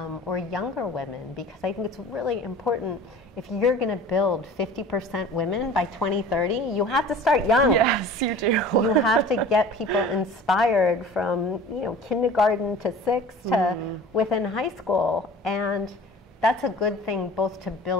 or younger women, because I think it's really important. If you're going to build 50% women by 2030, you have to start young. Yes, you do. You have to get people inspired from kindergarten to 6 to within high school, and that's a good thing both to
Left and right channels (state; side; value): normal; both; correlation 0.42